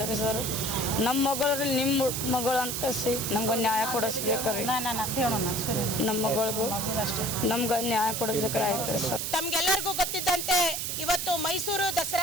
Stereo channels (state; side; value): noise; right; hiss, 2 dB below the sound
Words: ರೀ ಸರ್. ನಮ್ಮ ಮಗಳು ನಿಮ್ಮ ಮಗಳು ಅಂತ ಕಸಿ ನಮ್ಗೆ ನ್ಯಾಯ ಕೊಡಿಸ್ಬೇಕ್ರಿ. ನಮ್ಮ ಮಗಳಿಗೂ ನಮ್ಗೆ ನ್ಯಾಯ ಕೊಡಿಸ್ಬೇಕ್ರಿ. ಆಯ್ತು ರೀ ಸರ್. ತಮ್ಗೆಲ್ಲರಿಗೂ ಗೊತ್ತಿದ್ದಂತೆ ಇವತ್ತು ಮೈಸೂರು